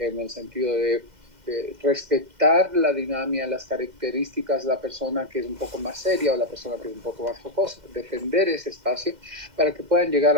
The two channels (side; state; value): left; late; 2.1 ms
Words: el sentido de respetar la dinámica, las características de la persona que es un poco más seria o la persona que es un poco más jocosa, defender ese espacio para que puedan llegar